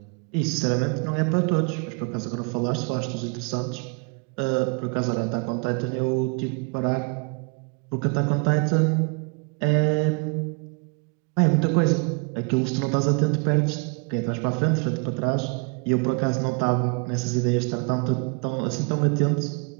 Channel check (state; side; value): quieter; left; 34.0 dB